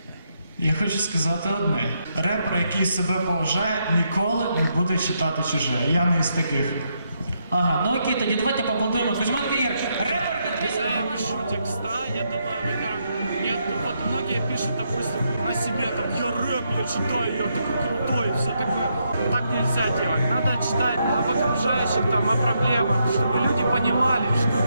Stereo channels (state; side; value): inverted; both; correlation -0.79